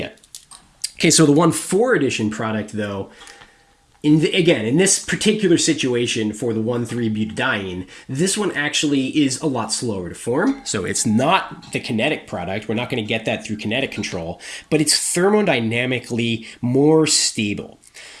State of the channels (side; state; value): both; identical; correlation 1.00